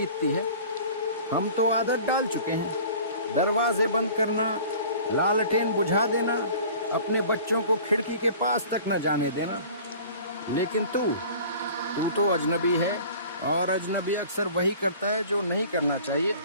है। हम तो आदत डाल चुके हैं, दरवाजे बंद करना, लालटेन बुझा देना, अपने बच्चों को खिड़की के पास तक न जाने देना। लेकिन तू तो अजनबी है, और अजनबी अक्सर वही करता है जो नहीं करना चाहिए।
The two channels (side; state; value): both; inverted; correlation -0.45